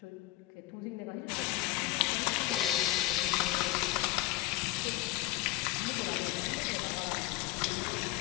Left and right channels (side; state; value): right; quieter; 17.0 dB